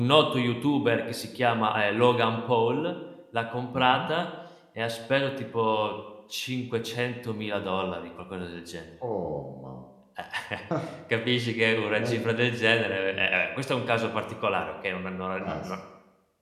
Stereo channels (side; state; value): both; identical; correlation 1.00